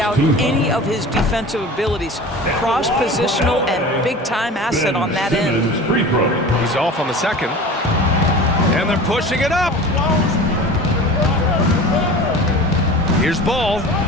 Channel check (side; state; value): both; normal; correlation 0.37